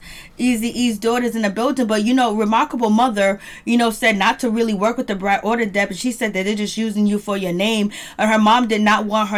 Eazy-E's daughter's in the building. But, Remarkable mother, said not to really work with the Brat or the Deb. And she said that they're just using you for your name. And her mom did not want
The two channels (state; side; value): identical; both; correlation 1.00